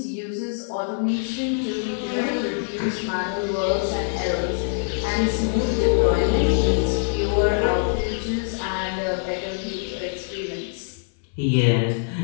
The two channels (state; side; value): silent; right; 62 dB below the other